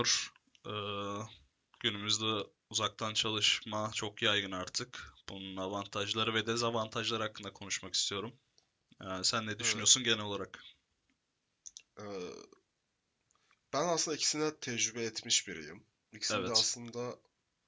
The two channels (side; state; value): both; identical; correlation 1.00